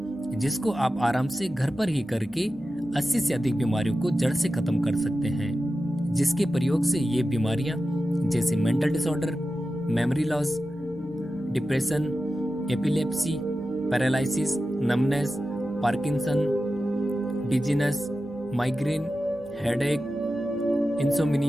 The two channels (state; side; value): noise; left; hum, 26 dB below the sound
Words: जिसको आप आराम से घर पर ही करके 80 से अधिक बीमारियों को जड़ से खत्म कर सकते हैं। जिसके प्रयोग से ये बीमारियां जैसे mental disorder, memory loss, depression, epilepsy, paralysis, numbness, Parkinson, dizziness, migraine, headache,